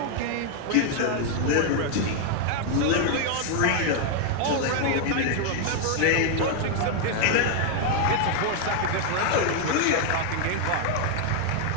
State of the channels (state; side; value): different; both; correlation 0.00